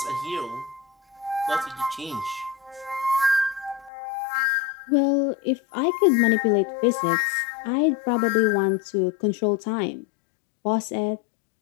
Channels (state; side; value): drops out; right; at 3.9 s